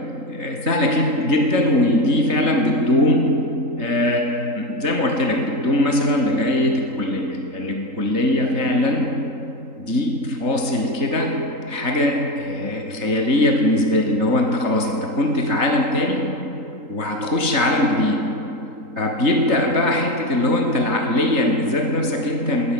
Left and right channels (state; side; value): late; left; 3.8 ms